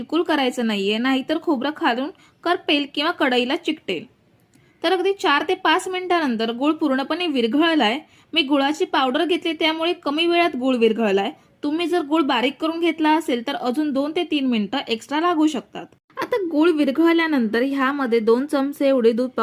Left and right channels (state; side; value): identical; both; correlation 1.00